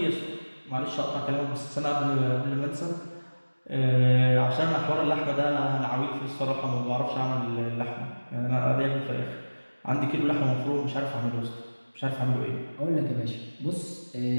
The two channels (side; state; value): both; inverted; correlation -1.00